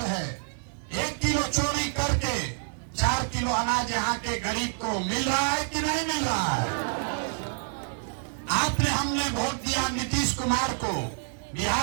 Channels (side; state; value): left; silent; digital silence